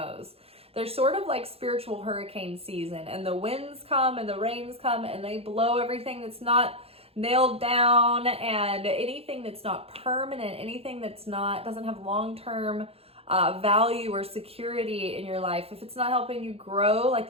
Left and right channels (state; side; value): late; left; 0.29 ms